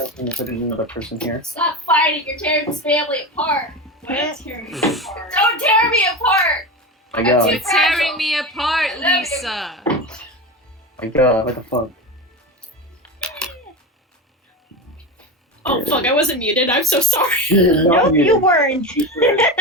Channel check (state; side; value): normal; both; correlation 0.22